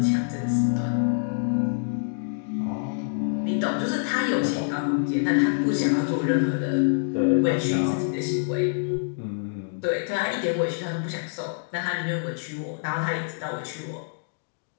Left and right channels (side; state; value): right; silent; digital silence